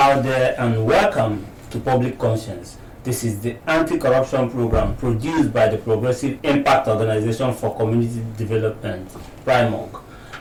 there and welcome to Public Conscience. This is the anti-corruption program produced by the Progressive Impact Organization for Community Development, PRIMOG.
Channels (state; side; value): identical; both; correlation 1.00